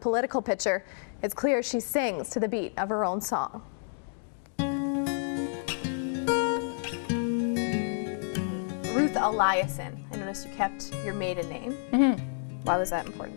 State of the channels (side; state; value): right; silent; digital silence